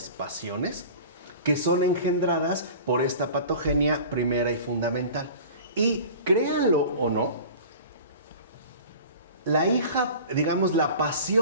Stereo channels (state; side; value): inverted; both; correlation -0.39